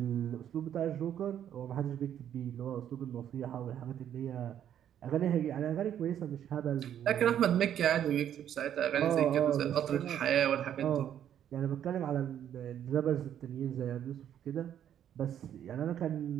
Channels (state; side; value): quieter; left; 10.1 dB